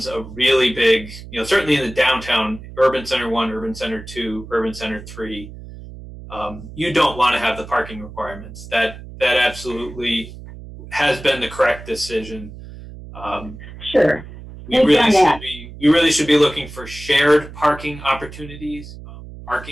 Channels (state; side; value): noise; right; hum, 15 dB below the sound